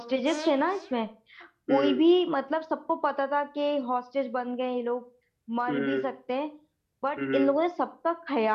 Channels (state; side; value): identical; both; correlation 1.00